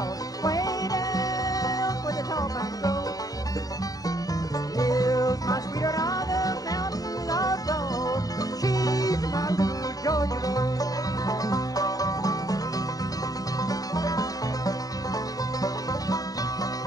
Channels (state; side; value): late; right; 0.18 ms